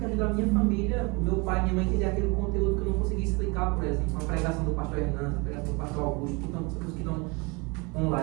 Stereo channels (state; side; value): quieter; left; 28.5 dB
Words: ajuda a minha família, o meu pai e minha mãe a entender aquele conteúdo que eu não consegui explicar, por exemplo, uma pregação do pastor Hernandes, uma pregação do pastor Augusto, que estão